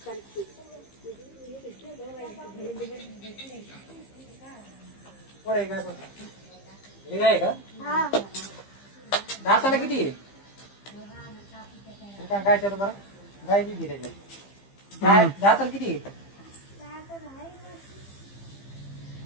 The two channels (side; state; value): right; late; 15 ms